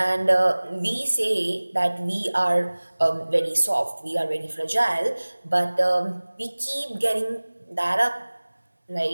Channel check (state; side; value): inverted; both; correlation -1.00